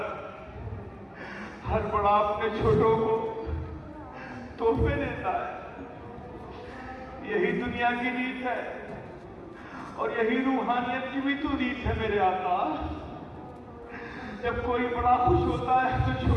ہر بڑا اپنے چھوٹوں کو تحفے دیتا ہے، یہی دنیا کی ریت ہے اور یہی روحانیت کی بھی تو ریت ہے میرے آقا۔ جب کوئی بڑا خوش ہوتا ہے تو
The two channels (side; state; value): both; identical; correlation 1.00